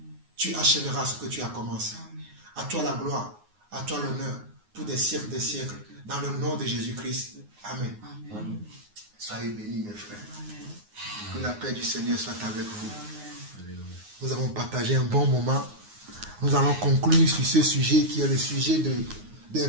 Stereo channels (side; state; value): left; late; 9.6 ms